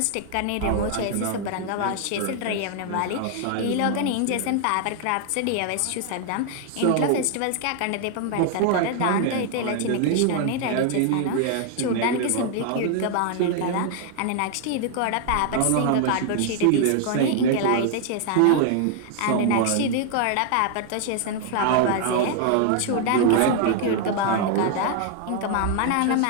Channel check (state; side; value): different; both; correlation 0.00